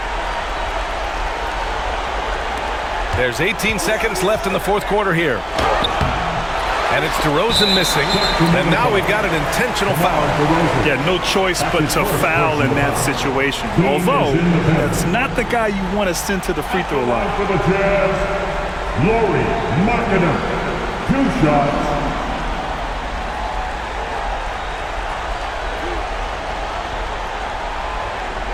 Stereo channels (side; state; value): both; identical; correlation 1.00